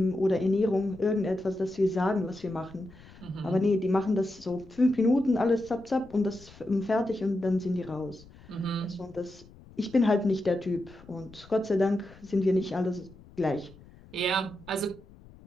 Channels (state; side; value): noise; left; rumble, 22 dB below the sound